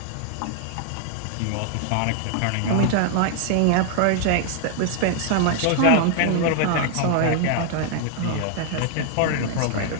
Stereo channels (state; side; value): different; both; correlation 0.00